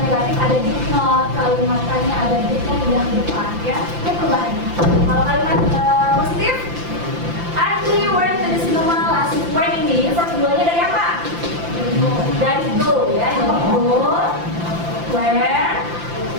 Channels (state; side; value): late; left; 5.8 ms